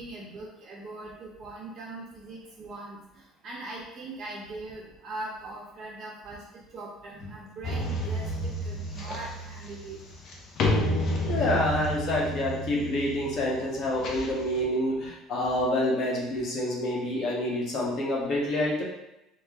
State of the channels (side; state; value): both; normal; correlation 0.52